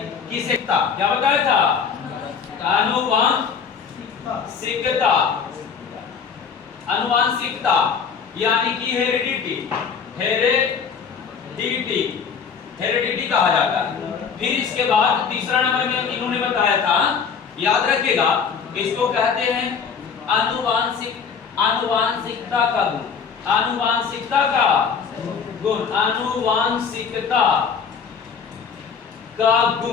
की शिक्षा। क्या बताया था? आनुवांशिकता, आनुवांशिकता यानी कि हेरिडिटी, हेरिडिटी, हेरिडिटी कहा जाता है। फिर इसके बाद तीसरा नंबर में इन्होंने बताया था, याद रखिएगा, इसको कहते हैं आनुवांशिकता का गुण, आनुवांशिकता का गुण, आनुवांशिकता का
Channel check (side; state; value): right; quieter; 6.4 dB